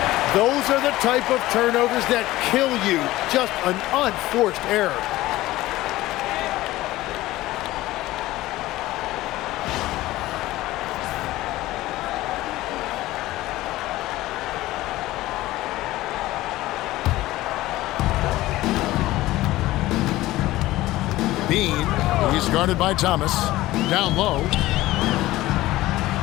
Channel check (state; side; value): quieter; right; 17.0 dB